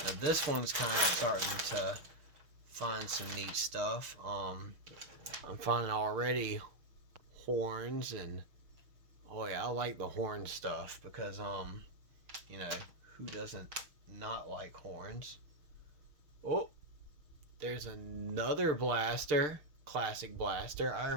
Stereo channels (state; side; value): late; left; 6.4 ms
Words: Now, this one's kind of starting to find some neat stuff. I'm finding already horns, and oh yeah, I like the horn stuff because you know, who doesn't not like horns? Oh, there's another blaster, classic blaster. I